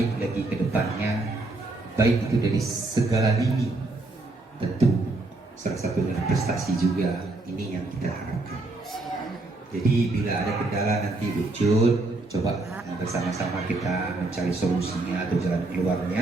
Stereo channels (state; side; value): quieter; left; 3.0 dB